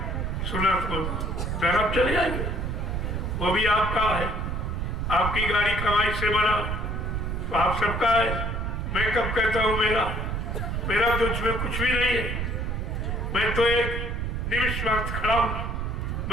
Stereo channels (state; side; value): noise; right; rumble, 2 dB below the sound